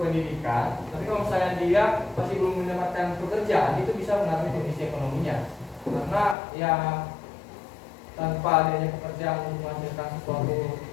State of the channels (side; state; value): right; drops out; at 6.4 s